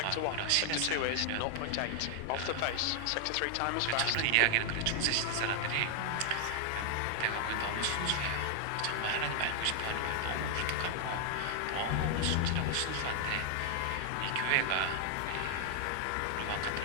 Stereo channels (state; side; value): different; both; correlation 0.00